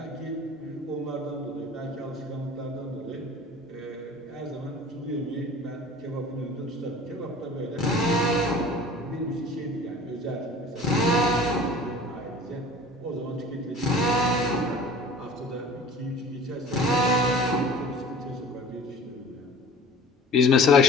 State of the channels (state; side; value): normal; both; correlation 0.43